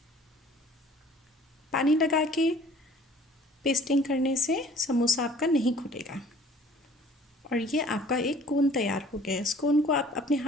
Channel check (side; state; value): both; normal; correlation 0.52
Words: पानी लगा के पेस्टिंग करने से समोसा आपका नहीं खुलेगा। और ये आपका एक कोन तैयार हो गया है। इस कोन को आप अपने